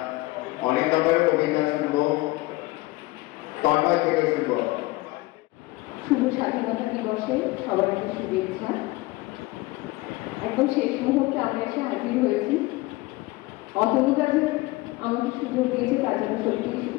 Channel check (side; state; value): right; quieter; 20.9 dB